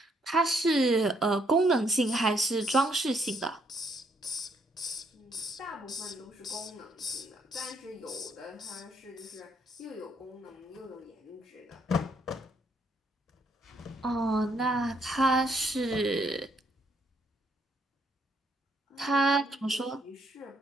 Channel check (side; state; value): both; normal; correlation 0.71